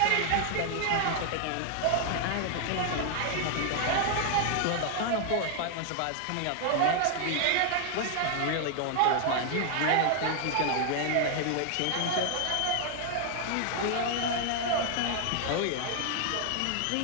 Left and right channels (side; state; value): both; different; correlation 0.00